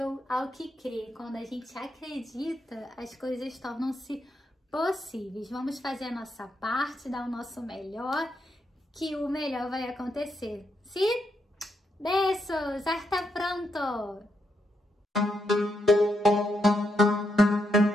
ao que crê. Quando a gente acredita, as coisas tornam-se possíveis. Vamos fazer a nossa parte, dar o nosso melhor, que o melhor vai acontecer. Sim? Beijos! Hasta pronto!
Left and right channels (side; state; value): both; normal; correlation 0.80